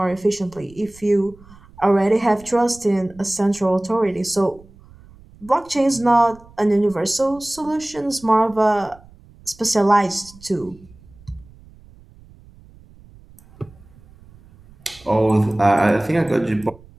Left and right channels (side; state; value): right; noise; rumble, 24 dB below the sound